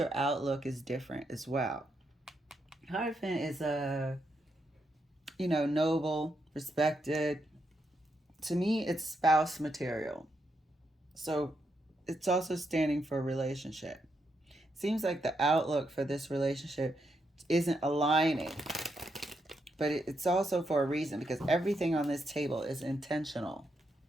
outlook is different as well. Hierophant is noble, respected. To me, it's spouse material. So it's also standing for a relationship. Seems like the outlook for this relationship isn't aligning, but it's also for a reason, because everything on this table is intentional.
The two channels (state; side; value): normal; both; correlation 0.81